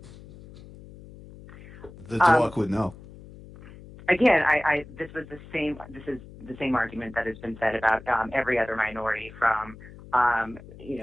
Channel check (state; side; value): noise; left; hum, 18 dB below the sound